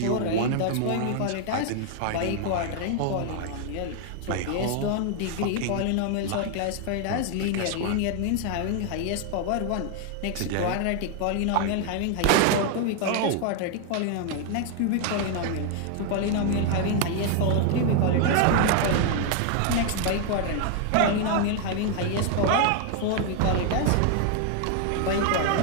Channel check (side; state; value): both; different; correlation 0.00